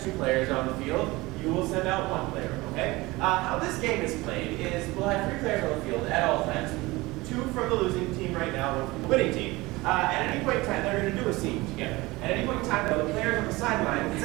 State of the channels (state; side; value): quieter; left; 21.3 dB